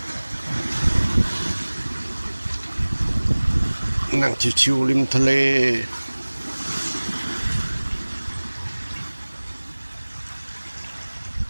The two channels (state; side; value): inverted; both; correlation -1.00